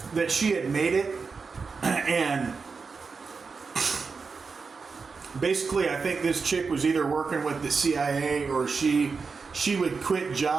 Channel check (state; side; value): quieter; left; 4.9 dB